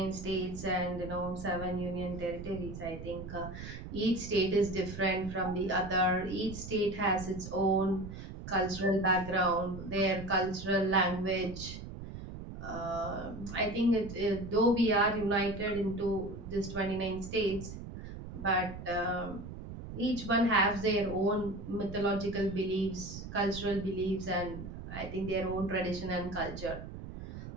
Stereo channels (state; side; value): noise; right; rumble, 10 dB below the sound